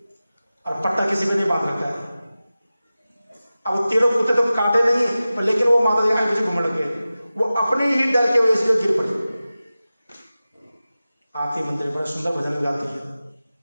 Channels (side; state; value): both; inverted; correlation -0.96